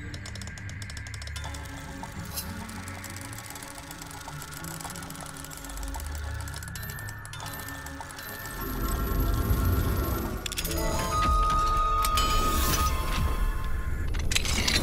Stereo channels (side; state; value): both; identical; correlation 1.00